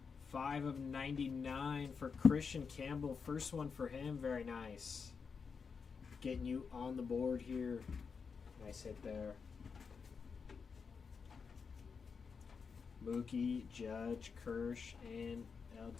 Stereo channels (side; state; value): right; quieter; 5.6 dB